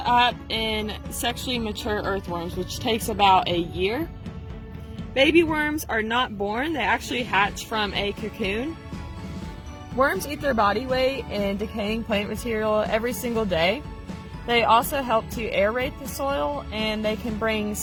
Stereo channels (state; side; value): identical; both; correlation 1.00